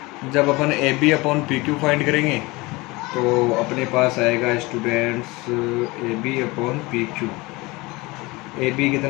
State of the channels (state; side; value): quieter; right; 23.0 dB